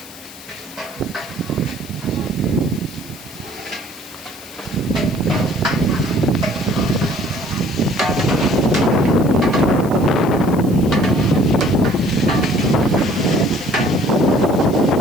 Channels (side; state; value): left; noise; hiss, 18 dB below the sound